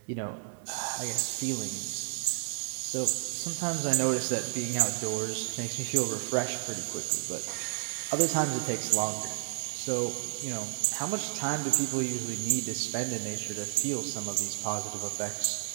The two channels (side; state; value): left; silent; digital silence